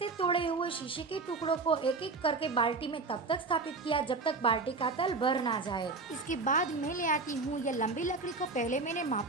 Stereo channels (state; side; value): quieter; left; 4.0 dB